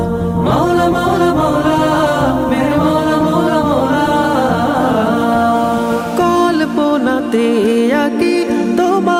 মৌলা মৌলা মৌলা মেরে মৌলা মৌলা মৌলা। কল্পনাতে আঁকি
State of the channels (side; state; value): both; identical; correlation 1.00